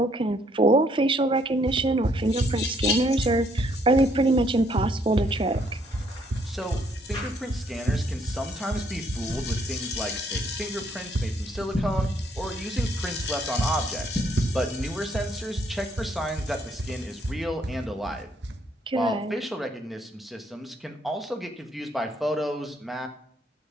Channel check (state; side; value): normal; both; correlation 0.68